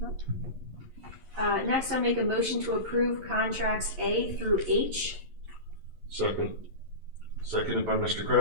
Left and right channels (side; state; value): left; late; 11 ms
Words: Next, I'll make a motion to approve contracts A through H. Second. Seconded by Mr.